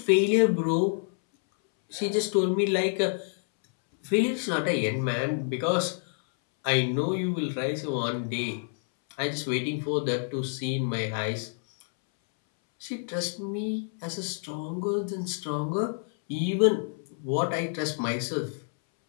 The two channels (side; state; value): right; silent; 59 dB below the other